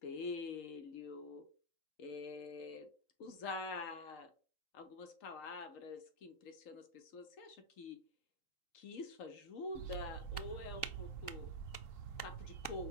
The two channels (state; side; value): late; right; 3.8 ms